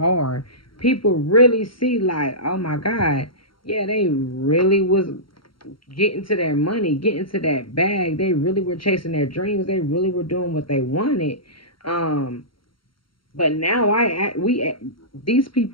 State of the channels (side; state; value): right; late; 0.73 ms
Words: People really see, like, oh my God, yeah, they really was getting to their money, getting to that bag. They really were chasing their dreams. They really were doing what they wanted. Um, but now these